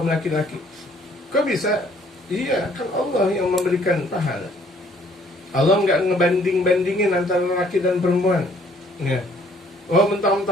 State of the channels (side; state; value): both; normal; correlation 0.61